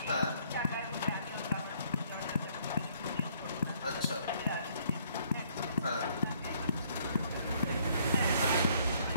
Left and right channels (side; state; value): both; inverted; correlation -0.64